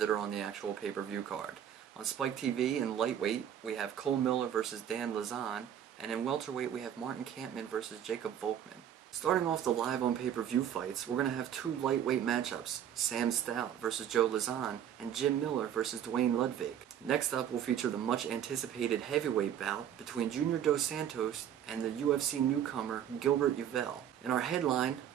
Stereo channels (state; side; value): quieter; left; 9.7 dB